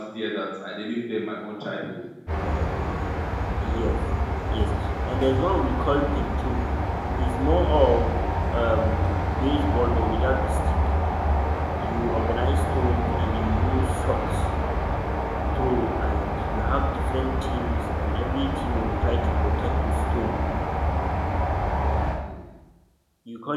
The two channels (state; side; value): identical; both; correlation 1.00